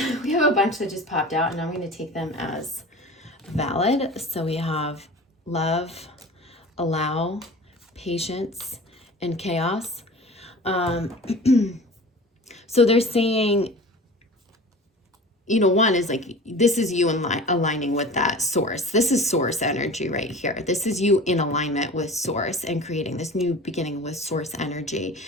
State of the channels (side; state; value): both; normal; correlation 0.38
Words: We have a bunch that just popped out, and I'm going to take them as valid. So we have love, allow, patience, and chaos. So they're saying, one is like, this is you aligning with that source. This is source energy right here. This is you in alignment with source and creating this new beginning with source energy,